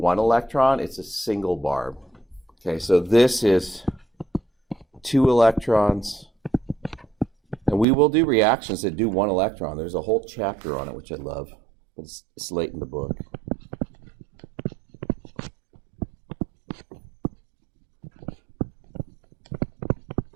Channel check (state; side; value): drops out; left; at 7.9 s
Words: electron, it's a single barb. Okay, so this is two electrons. And we will do reactions that do one electron. There's a whole chapter on it, which I love. But it's late in the book.